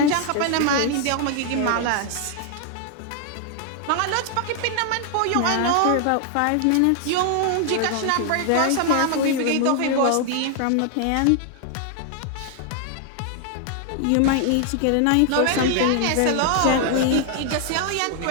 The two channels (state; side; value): different; both; correlation 0.00